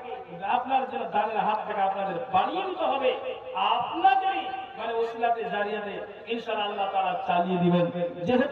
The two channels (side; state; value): both; identical; correlation 1.00